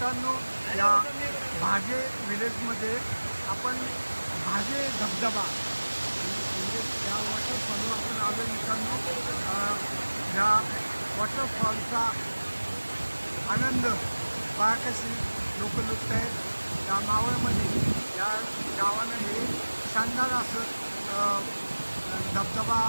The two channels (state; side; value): inverted; both; correlation -1.00